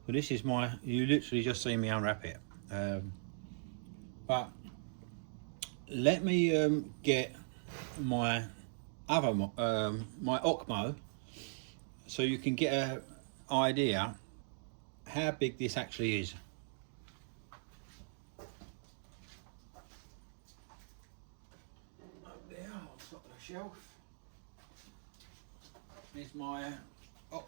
So this is my, you literally just see me unwrap it, but let me get my other my Ocmo, so you can get an idea how big this actually is. Up there on top of the shelf is my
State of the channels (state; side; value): silent; left; digital silence